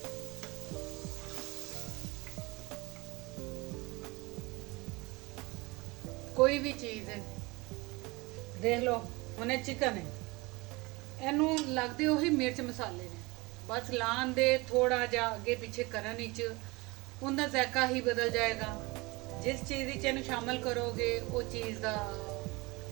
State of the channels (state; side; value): quieter; left; 24.1 dB